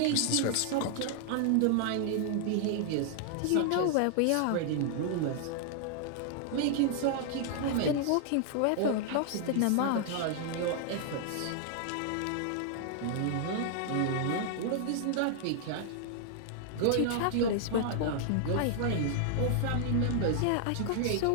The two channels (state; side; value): different; both; correlation -0.01